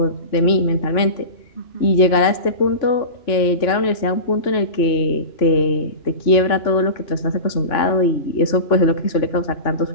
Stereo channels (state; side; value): late; right; 2.9 ms